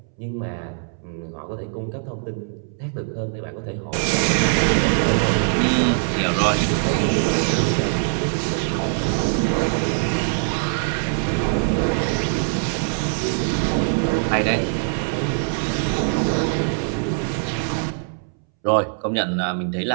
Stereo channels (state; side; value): silent; left; 64 dB below the other